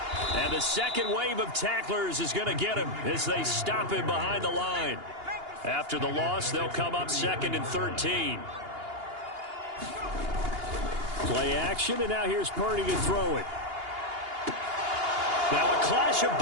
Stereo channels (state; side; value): late; left; 2.8 ms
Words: And the second wave of tacklers is going to get him as they stop him behind the line. After the loss, they'll come up 2nd and 13. Play action, and now here's Purdy to throw it. Now a clash of